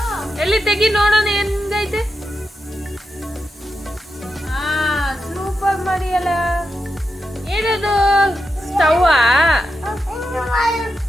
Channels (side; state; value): both; normal; correlation 0.88